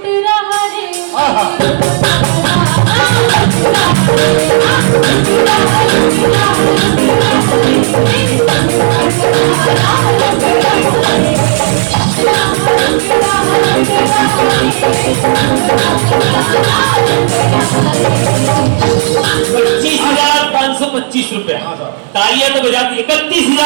₹25,525 रुपया। तालियां तो बजा दी।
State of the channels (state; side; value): silent; left; 59 dB below the other